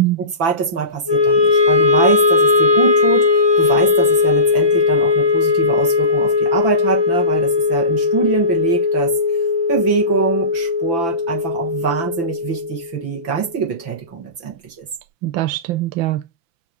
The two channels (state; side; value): late; left; 5.9 ms